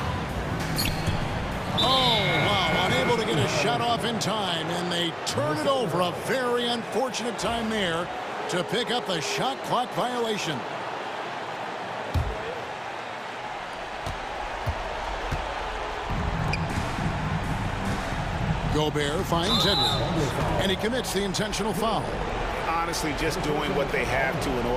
Oh, wow, unable to get a shot off in time, and they turn it over. A very unfortunate time there to pick up the shot clock violation. Gobert finds Edwards, and he commits the intentional foul. Honestly, just doing what they have to in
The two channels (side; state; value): both; identical; correlation 1.00